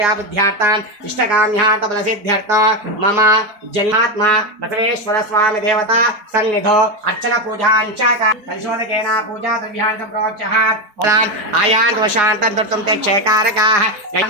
बुद्ध्यार्थान् इष्टकाम्यार्थबलसिद्ध्यर्थं मम जन्मात्मा बसवेश्वर स्वामी देवता सन्निधौ अर्चन पूजाञ्च कलशोदकेन पूजा द्रव्याणि प्रोच्यः आयान्त वशान्तं दुर्तं ते क्षेकारकाः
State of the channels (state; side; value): late; left; 4.9 ms